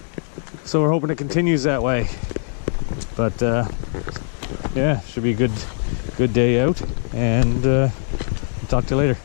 So we're hoping it continues that way. But yeah, should be a good day out, and talk to you later.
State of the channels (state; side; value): silent; right; digital silence